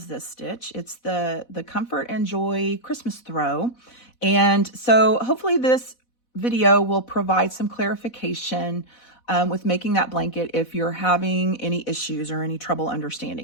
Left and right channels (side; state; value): right; late; 4.1 ms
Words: this stitch. It's the Comfort and Joy Christmas Throw. And so hopefully this video will provide some clarification with making that blanket if you're having any issues or any trouble